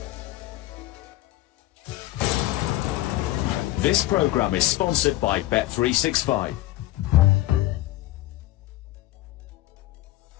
This programme is sponsored by Bet365.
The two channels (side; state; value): right; quieter; 16.2 dB